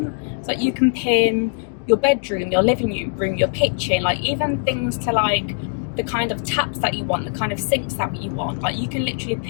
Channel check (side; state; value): right; silent; digital silence